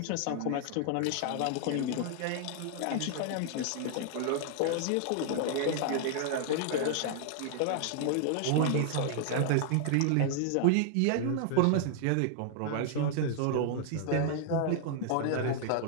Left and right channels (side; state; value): both; different; correlation 0.00